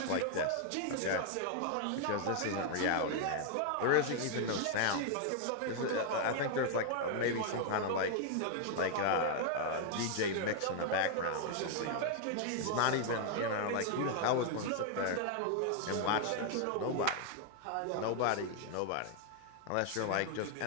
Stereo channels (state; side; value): different; both; correlation 0.00